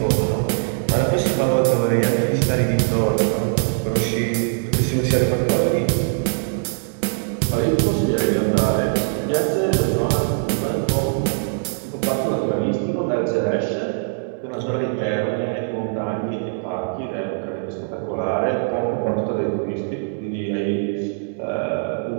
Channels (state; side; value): silent; left; digital silence